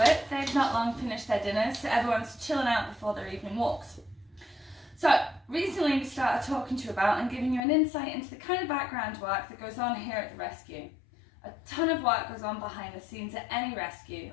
They've not long finished their dinners, so everyone's chilling out before their evening walks. So, recently we started talking to you about and giving you an insight into the kind of background work that goes on here at the rescue. A ton of work goes on behind the scenes at any rescue,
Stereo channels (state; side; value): drops out; right; at 7.6 s